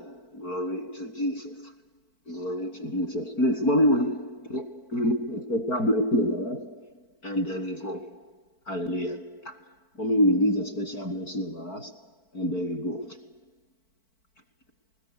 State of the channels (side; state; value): right; late; 4.5 ms